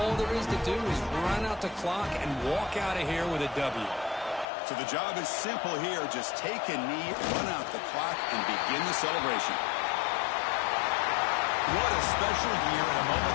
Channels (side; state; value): right; drops out; at 4.5 s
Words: there is to do is run out the clock and walk out of here with a W. So the job is simple here. Just take a knee, run out the clock, and begin the celebration. What a special year and a moment